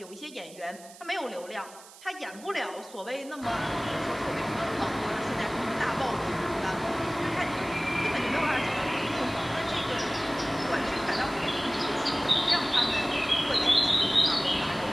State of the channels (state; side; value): noise; right; hiss, 20 dB below the sound